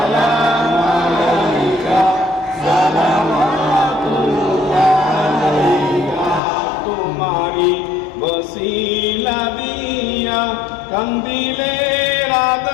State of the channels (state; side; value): drops out; right; at 6.4 s